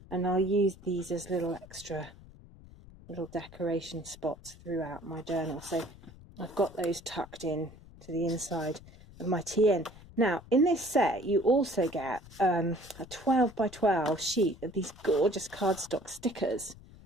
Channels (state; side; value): noise; left; rumble, 20 dB below the sound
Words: And I'll use these as little extra little decoration spots throughout my journal. So I've got those tucked in to the inside of my TN. Now, in this set, you also get a 12 by 12 sheet of these gorgeous cardstock stickers.